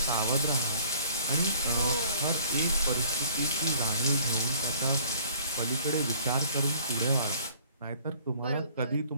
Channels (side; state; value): both; inverted; correlation -0.55